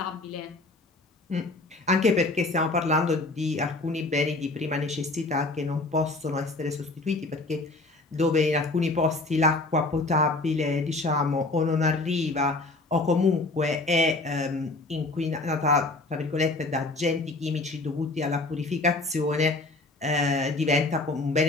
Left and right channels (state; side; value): quieter; right; 3.1 dB